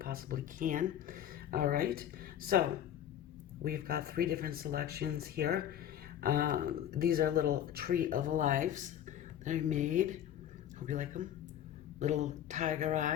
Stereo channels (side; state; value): right; quieter; 10.6 dB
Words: can. All right. So we've got 3 different selections here. These are little tree of lives that I made. Hope you like them. Little tiger